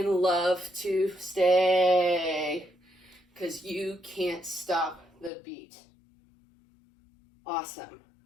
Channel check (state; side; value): drops out; right; at 5.3 s